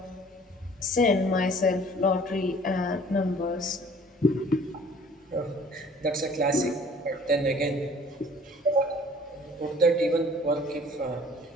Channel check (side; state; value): both; normal; correlation 0.52